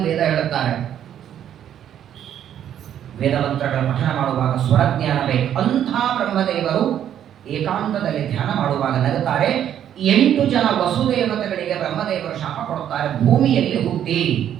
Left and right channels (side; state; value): left; quieter; 10.2 dB